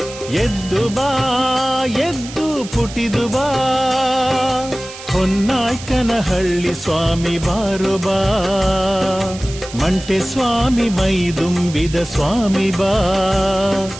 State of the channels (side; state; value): right; noise; hiss, 14 dB below the sound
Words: ಎದ್ದು ಬಾ ಎದ್ದು ಪುಟಿದು ಬಾ, ಹೊನ್ನಾಯ್ಕನಹಳ್ಳಿ ಸ್ವಾಮಿ ಬಾರು ಬಾ, ಮಂಟೆ ಸ್ವಾಮಿ ಮೈದುಂಬಿದ ಸ್ವಾಮಿ ಬಾ,